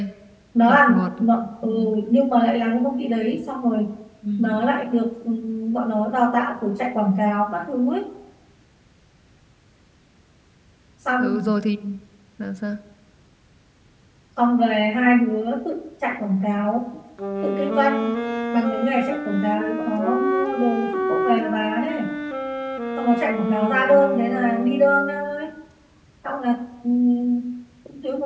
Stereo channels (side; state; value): both; identical; correlation 1.00